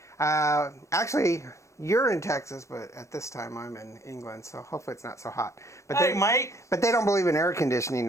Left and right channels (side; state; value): right; late; 0.15 ms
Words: Actually, you're in Texas, but at this time I'm in England, so hopefully it's not so hot. But hey, mate. But they don't believe in air